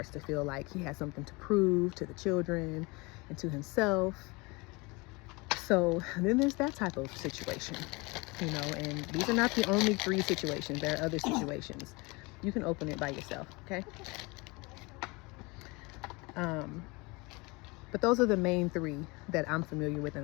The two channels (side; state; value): right; quieter; 26.0 dB